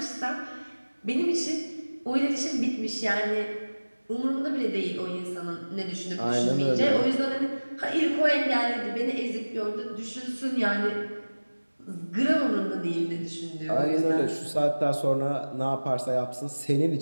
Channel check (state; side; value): inverted; both; correlation -1.00